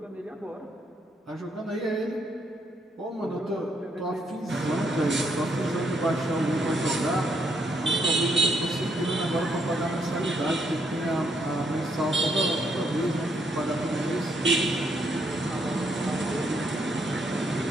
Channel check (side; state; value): both; normal; correlation 0.74